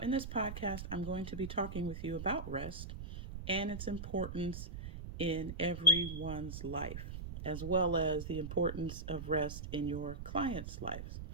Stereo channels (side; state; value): right; noise; rumble, 8 dB below the sound